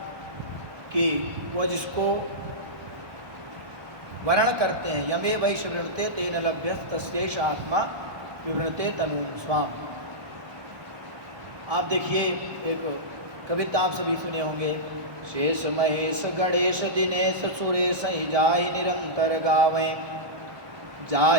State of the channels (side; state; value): left; late; 1.2 ms